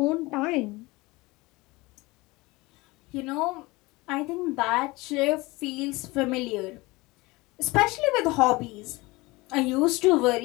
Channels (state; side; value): quieter; right; 22.6 dB